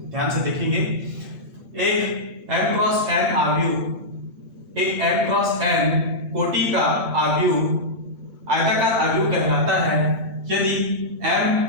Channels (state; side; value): late; left; 7.8 ms